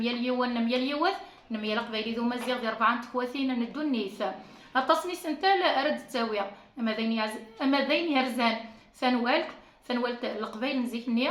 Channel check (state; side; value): identical; both; correlation 1.00